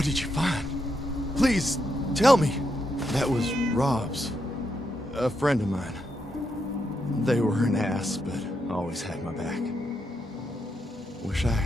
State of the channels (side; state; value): both; normal; correlation 0.81